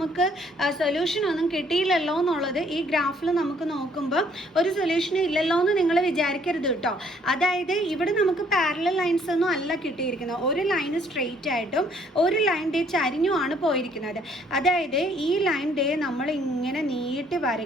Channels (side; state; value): both; normal; correlation 0.63